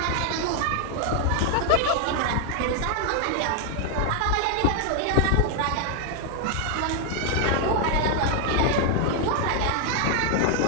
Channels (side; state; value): both; different; correlation 0.00